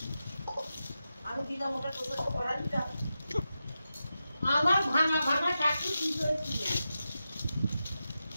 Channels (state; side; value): inverted; both; correlation -0.90